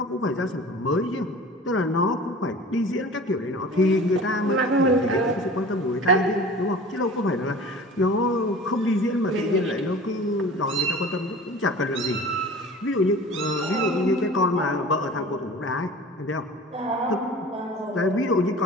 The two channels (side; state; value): both; normal; correlation 0.40